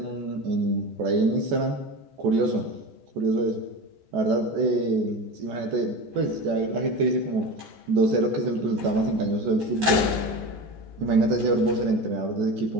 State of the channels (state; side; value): late; left; 14 ms